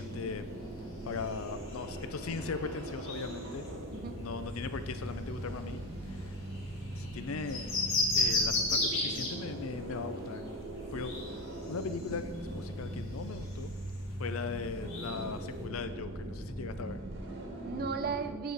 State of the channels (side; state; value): both; normal; correlation 0.21